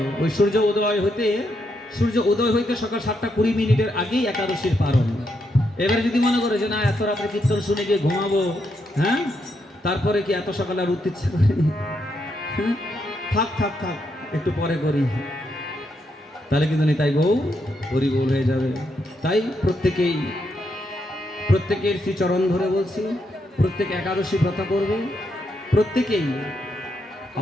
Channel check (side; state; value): both; normal; correlation 0.80